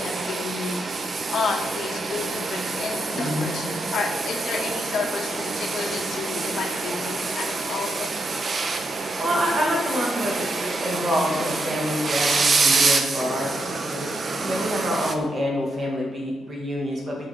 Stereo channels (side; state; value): both; normal; correlation 0.83